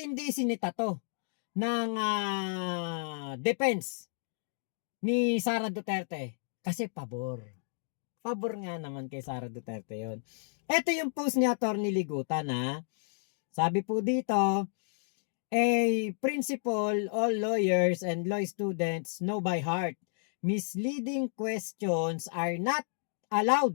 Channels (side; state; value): right; silent; digital silence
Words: hindi sinita to ng defense ni Sara Duterte? Kasi pabor nga naman kay Sara Duterte yon. Ito yung post ni Attorney Ligutan sabi po dito, a principal, all lawyers and law students know by heart misleading questions are not